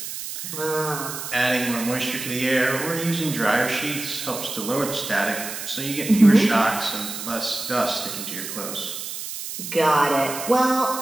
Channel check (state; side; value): noise; right; hiss, 7 dB below the sound